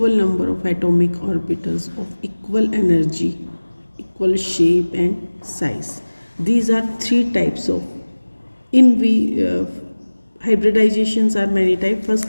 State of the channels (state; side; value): inverted; both; correlation -1.00